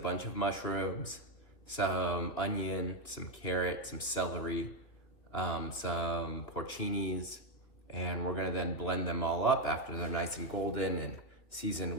of mushrooms, some onion, some carrot, some celery, some porcinis, and we're gonna then blend them all up after they're nice and golden and seasoned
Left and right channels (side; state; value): right; late; 3.3 ms